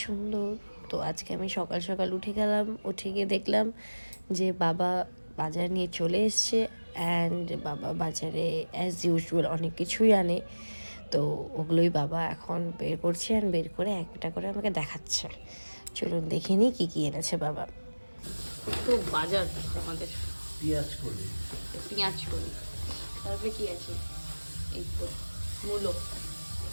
সুন্দর। তো আজকে আমি সকাল সকাল উঠে গেলাম, উঠে গিয়ে দেখলাম যে বাবা বাজার নিয়ে চলে এসছে। অ্যান্ড বাবা বাজারে অ্যাজ ইউজুয়াল অনেক কিছুই আনে। তো ওগুলোই বাবা এখন বের করছে, অ্যান্ড বের করে একটা করে আমাকে দেখাচ্ছে। চলুন দেখে নিই কী কী এনেছে বাবা। তো বাজার আমাদের পেঁয়াজ করি, তারপরে কি আছে? এই তো মূলো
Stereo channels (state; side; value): inverted; both; correlation -1.00